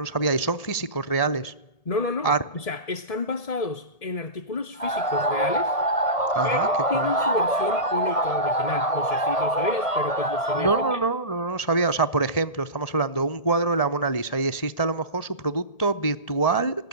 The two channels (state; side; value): late; right; 1.7 ms